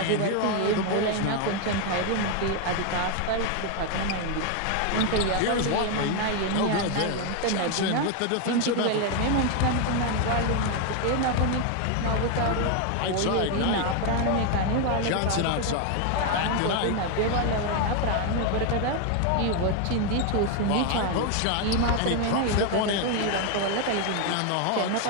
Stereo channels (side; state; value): both; different; correlation 0.01